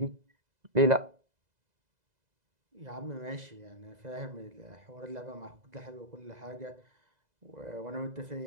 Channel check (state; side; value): late; left; 2.0 ms